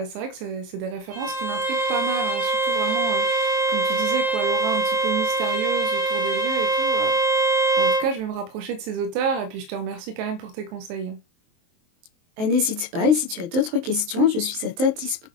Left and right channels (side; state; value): left; late; 23 ms